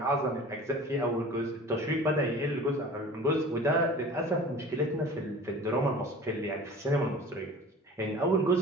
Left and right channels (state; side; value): normal; both; correlation 0.41